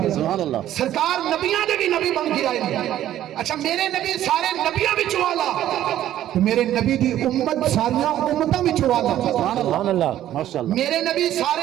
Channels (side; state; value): left; quieter; 12.4 dB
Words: سبحان اللہ، سرکار نبیاں دے بھی نبی بن کے آئے گے۔ اچھا میرے نبی سارے نبیاں وچوں والا، تو میرے نبی دی امت ساریاں امتاں وچوں والا، سبحان اللہ، ماشاء اللہ، میرے نبی